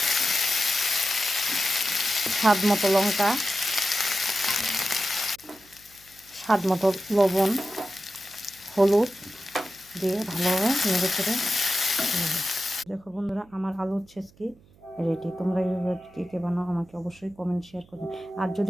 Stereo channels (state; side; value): noise; right; hum, 28 dB below the sound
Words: স্বাদ মতো লঙ্কা, স্বাদ মতো লবণ, হলুদ দিয়ে ভালোভাবে নেড়ে চেড়ে। দেখো বন্ধুরা, আমার আলুর ছেচকি রেডি। তোমরা এইভাবে কে কে বানাও আমাকে অবশ্যই কমেন্ট শেয়ার করবে। আর